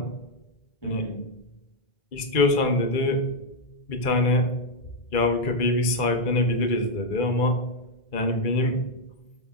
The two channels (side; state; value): right; late; 2.3 ms